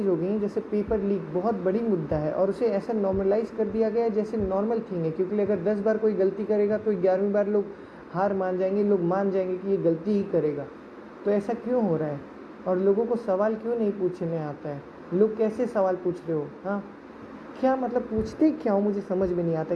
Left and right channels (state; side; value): identical; both; correlation 1.00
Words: हो गई हैं। जैसे पेपर लीक बहुत बड़ी मुद्दा है और उसे ऐसा नॉर्मलाइज कर दिया गया है जैसे नॉर्मल थिंग है, क्योंकि अगर 10 बार कोई गलती करेगा तो 11वीं बार लोग हार मान जाएंगे, लोग मान जाएंगे कि ये गलती ही करेगा। तो ऐसा क्यों हो रहा है और लोगों को सवाल क्यों नहीं पूछने आता है? लोग कैसे सवाल पूछ रहे हो? हाँ, क्या मतलब पूछते क्या हो, मुझे समझ में नहीं आता।